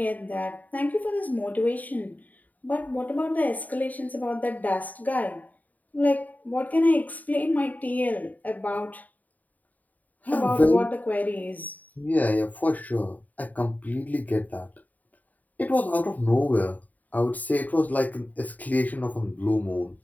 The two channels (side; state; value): right; late; 0.078 ms